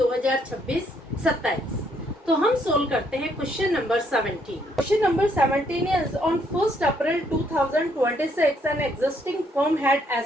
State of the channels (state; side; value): normal; both; correlation 0.70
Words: तो हम सोल्व करते हैं question number 17। Question number 17 is on 1st April 2026 an existing firm had